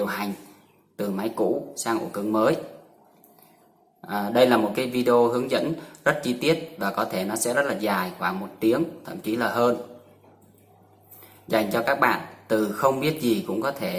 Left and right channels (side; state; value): both; identical; correlation 1.00